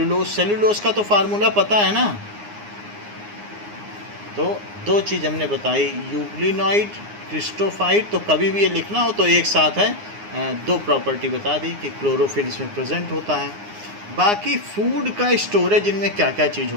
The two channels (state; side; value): late; left; 9.7 ms